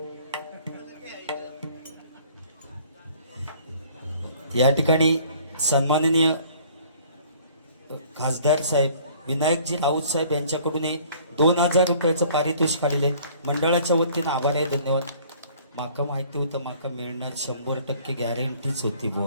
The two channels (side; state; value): both; inverted; correlation -0.54